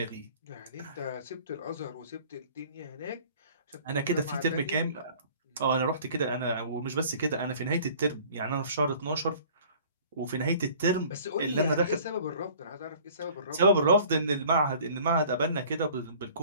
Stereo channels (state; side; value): inverted; both; correlation -0.49